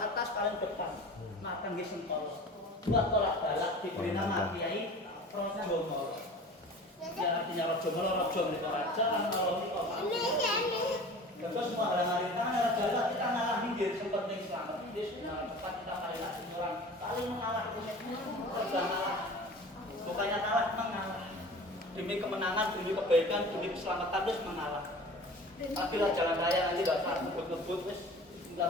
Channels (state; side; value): normal; both; correlation 0.40